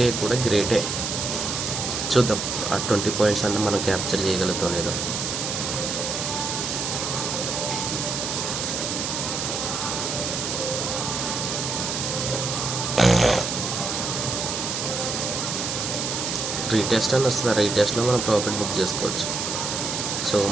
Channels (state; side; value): noise; right; hiss, 2 dB below the sound